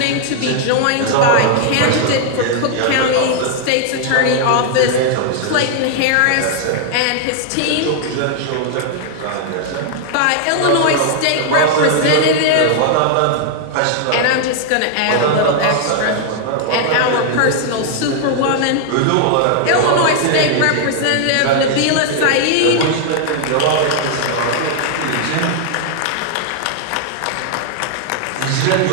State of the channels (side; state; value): both; different; correlation 0.00